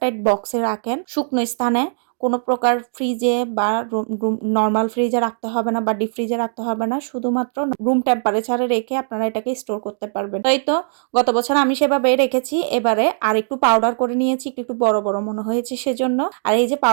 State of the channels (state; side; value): silent; left; digital silence